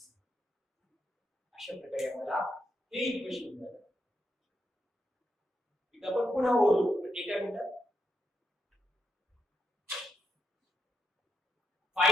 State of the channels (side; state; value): both; normal; correlation 0.81